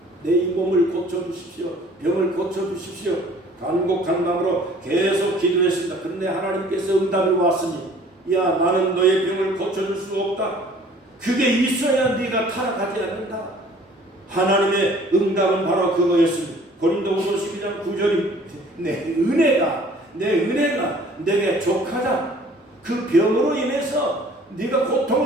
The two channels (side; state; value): both; normal; correlation 0.53